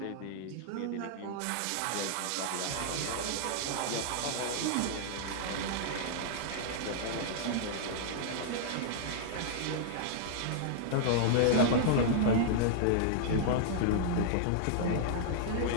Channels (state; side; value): different; both; correlation -0.01